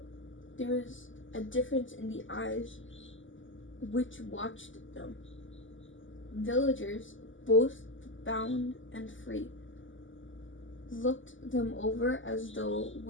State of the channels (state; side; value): late; right; 0.56 ms